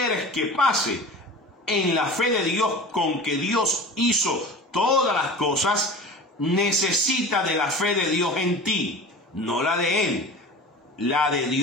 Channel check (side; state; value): both; normal; correlation 0.36